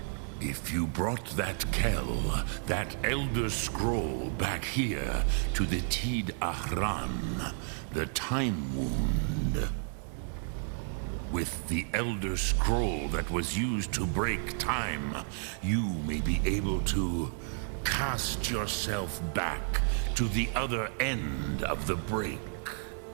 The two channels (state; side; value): silent; left; 57 dB below the other